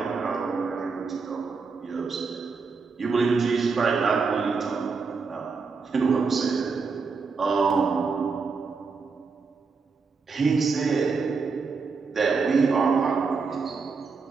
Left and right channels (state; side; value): quieter; left; 4.8 dB